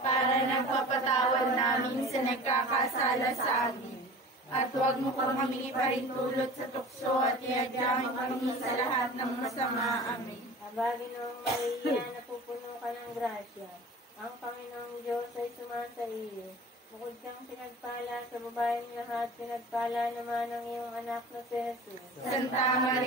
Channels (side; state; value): both; normal; correlation 0.39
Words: nagpapatawad namin sa nagkakasala sa amin. At huwag mo po kami iparintulot sa tukso at iadyamin kami sa lahat ng masama. Amen. Abagin ng Maria, napupuno ka ng grasya. Ang Panginoong Diyos ay sumasa iyo. Bukod kang pinagpala sa babaeng lahat, pinagpala naman ang iyong anak na si Jesus. Santa